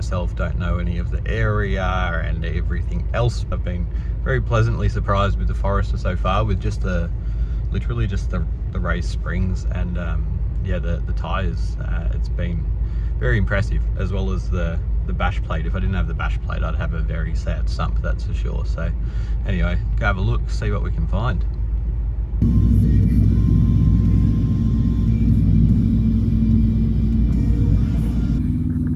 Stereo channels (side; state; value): both; identical; correlation 1.00